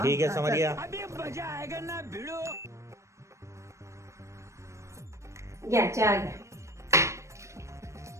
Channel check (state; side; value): late; left; 0.14 ms